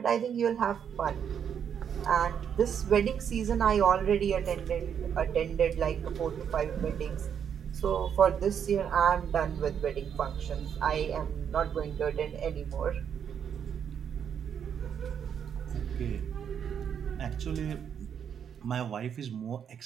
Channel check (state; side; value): quieter; left; 8.1 dB